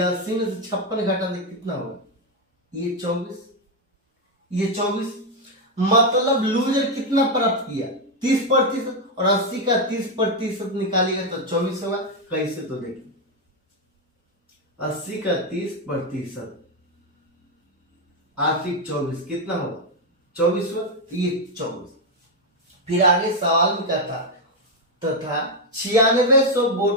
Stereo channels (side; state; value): both; normal; correlation 0.04